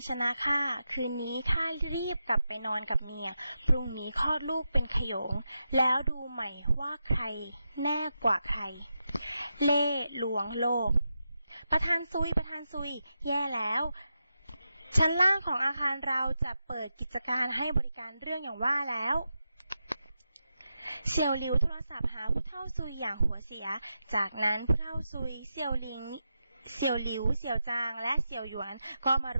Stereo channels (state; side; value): inverted; both; correlation -0.88